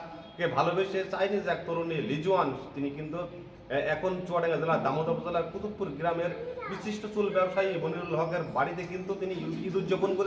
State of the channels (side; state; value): both; identical; correlation 1.00